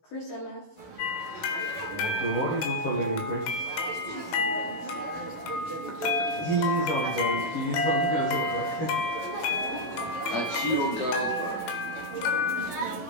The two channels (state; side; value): late; right; 16 ms